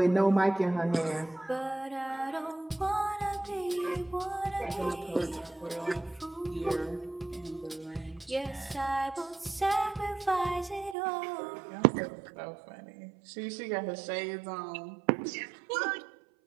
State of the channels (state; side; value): drops out; left; at 11.0 s